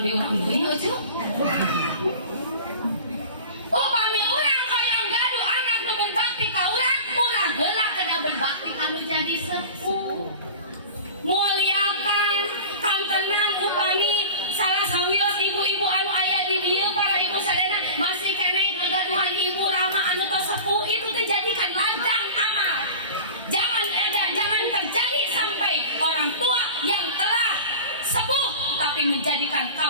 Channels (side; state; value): both; inverted; correlation -0.35